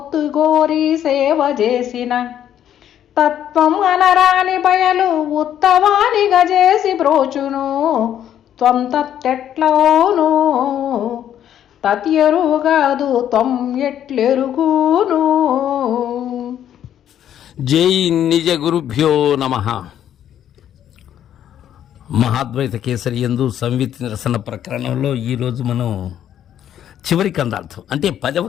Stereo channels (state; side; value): quieter; right; 10.4 dB